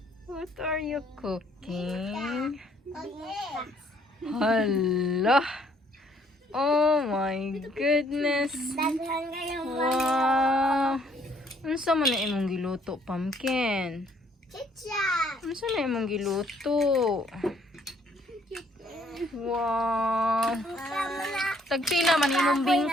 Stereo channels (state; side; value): normal; both; correlation 0.64